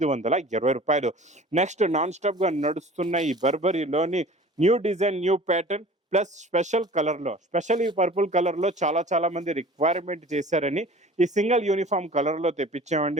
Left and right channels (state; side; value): normal; both; correlation 0.44